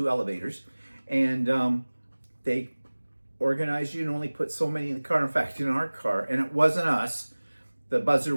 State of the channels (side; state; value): both; inverted; correlation -1.00